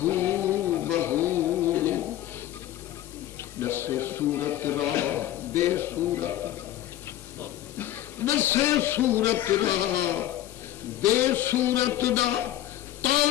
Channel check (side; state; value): right; quieter; 13.4 dB